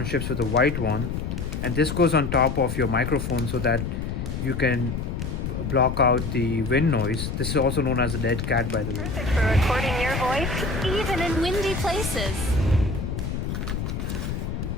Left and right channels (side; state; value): left; noise; rumble, 3 dB below the sound